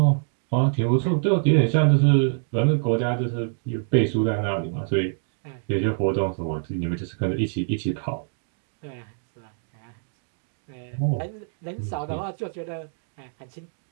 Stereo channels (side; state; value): left; silent; digital silence